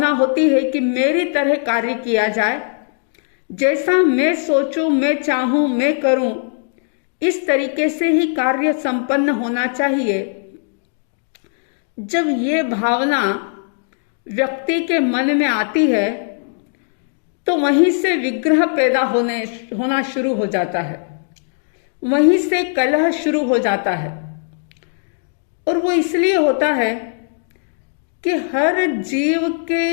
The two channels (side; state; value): right; silent; digital silence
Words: होती है कि मेरी तरह कार्य किया जाए, जैसा मैं सोचूं, मैं चाहूं, मैं करूं, इस तरीके से ही कार्य संपन्न होना चाहिए। जब ये भावना व्यक्ति के मन में आती है तो वहीं से विग्रह पैदा होना शुरू हो जाता है, वहीं से कलह शुरू हो जाता है। और वो इसलिए होता है कि हर जीव